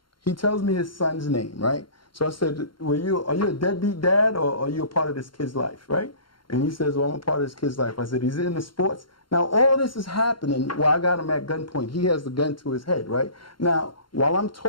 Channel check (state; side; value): late; right; 0.73 ms